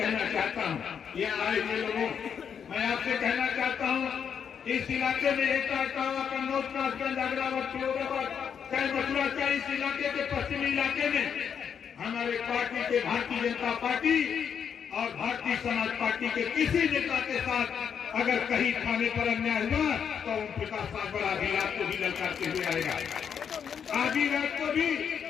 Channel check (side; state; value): right; quieter; 7.5 dB